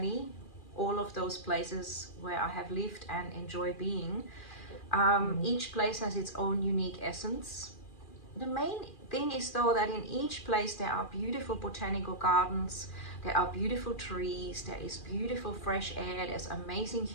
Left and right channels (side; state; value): right; late; 2.4 ms